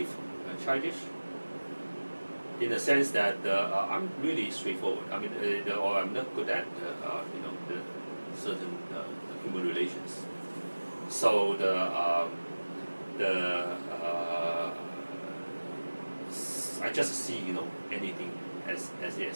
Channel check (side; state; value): both; inverted; correlation -1.00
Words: childish, in the sense that I'm really straightforward. I mean, or I'm not good at the certain human relations. So I just see anything as